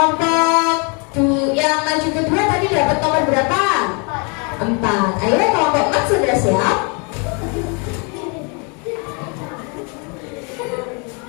yang maju kedua tadi dapat nomor berapa? 4. Ayo kelompok 4 sudah siap?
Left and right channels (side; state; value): right; quieter; 34.4 dB